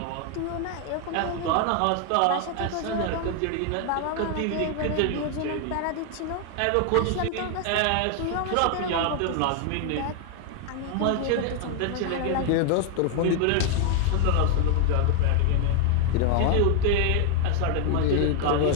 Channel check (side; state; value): both; different; correlation 0.00